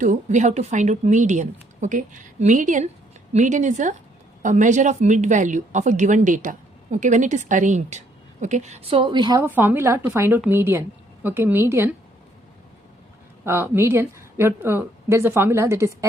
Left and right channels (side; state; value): both; normal; correlation 0.68